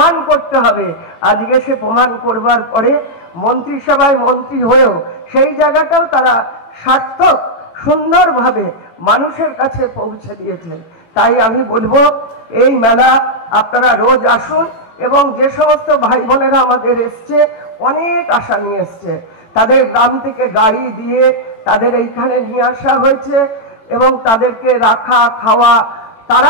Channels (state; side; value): late; right; 18 ms